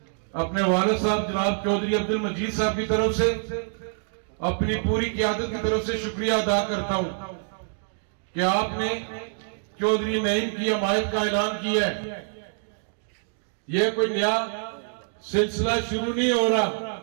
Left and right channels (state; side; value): silent; left; 61 dB below the other